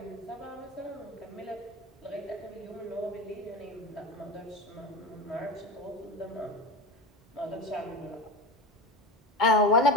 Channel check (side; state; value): both; normal; correlation 0.28